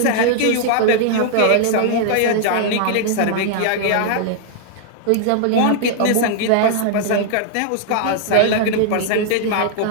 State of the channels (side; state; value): both; different; correlation -0.01